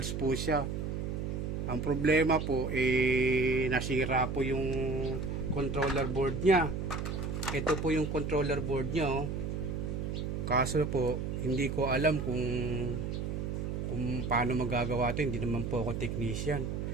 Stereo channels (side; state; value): right; noise; hum, 3 dB below the sound